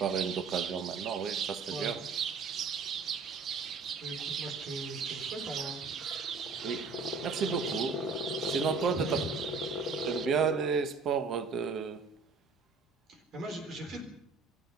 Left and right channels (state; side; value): quieter; left; 4.5 dB